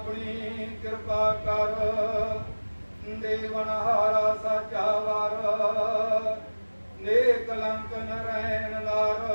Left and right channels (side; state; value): both; inverted; correlation -1.00